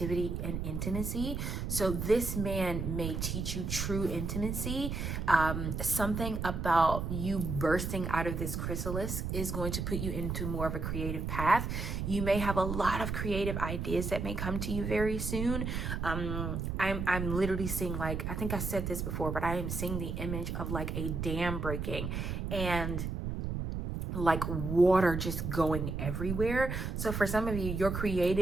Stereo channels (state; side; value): noise; right; rumble, 3 dB below the sound